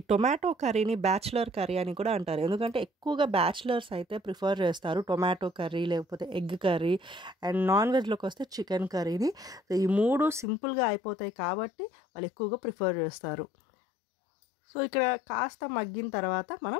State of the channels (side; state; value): right; drops out; at 10.5 s